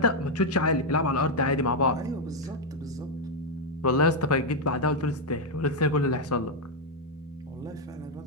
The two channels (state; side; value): normal; both; correlation 0.01